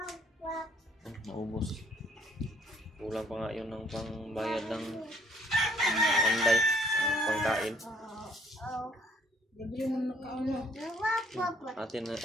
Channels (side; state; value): both; normal; correlation 0.64